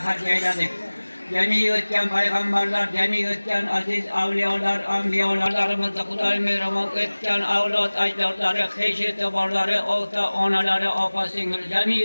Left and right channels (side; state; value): both; inverted; correlation -1.00